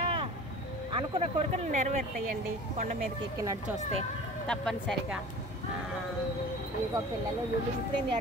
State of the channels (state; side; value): normal; both; correlation 0.40